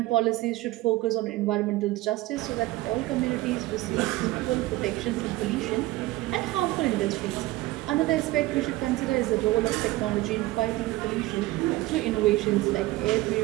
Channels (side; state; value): left; quieter; 18.4 dB